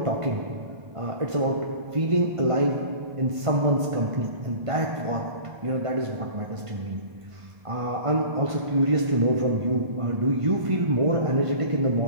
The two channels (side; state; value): left; late; 1.5 ms